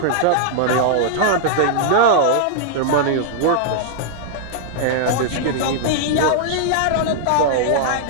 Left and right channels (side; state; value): both; different; correlation -0.01